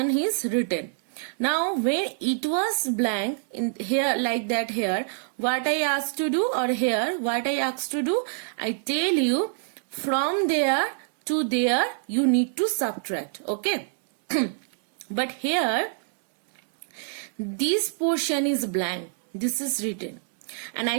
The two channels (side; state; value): left; silent; digital silence